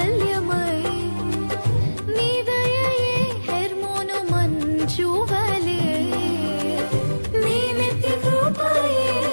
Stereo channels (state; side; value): inverted; both; correlation -1.00